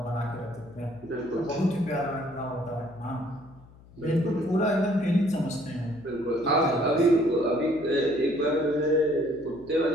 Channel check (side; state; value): left; noise; hum, 23 dB below the sound